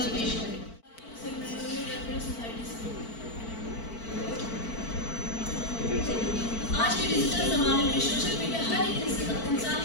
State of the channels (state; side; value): late; right; 4.5 ms